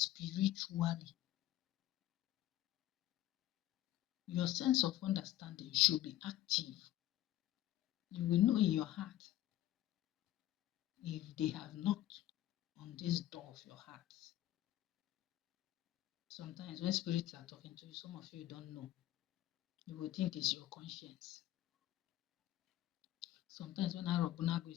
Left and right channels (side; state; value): right; quieter; 14.1 dB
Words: spiritually. Your sense of understanding should be active. You will know in your heart if they have knocked on this door of your heart. Sometimes when spirits are talking to you, some of you don't know. You will think it's your conscience. Sometimes when Arobunago